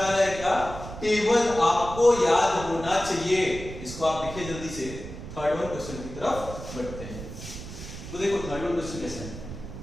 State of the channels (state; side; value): noise; right; rumble, 11 dB below the sound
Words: आ रहा है क्या? टेबल आपको याद होना चाहिए। इसको आप लिखिए जल्दी से। थर्ड वन क्वेश्चन की तरफ बढ़ते हैं। तो देखो थर्ड वन क्वेश्चन कैसा है?